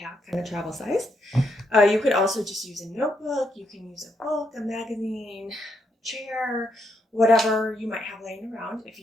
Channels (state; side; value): normal; both; correlation 0.77